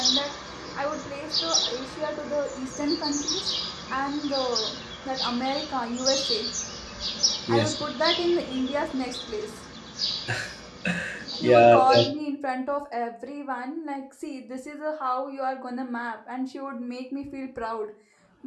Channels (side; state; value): both; identical; correlation 1.00